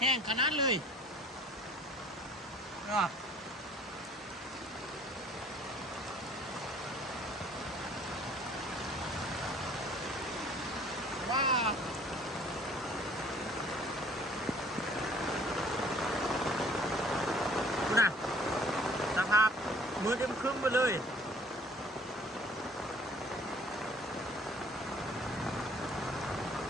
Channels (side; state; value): both; normal; correlation 0.54